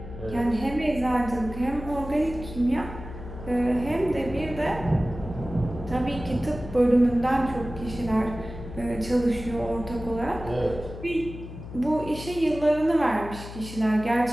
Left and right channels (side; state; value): left; noise; hum, 12 dB below the sound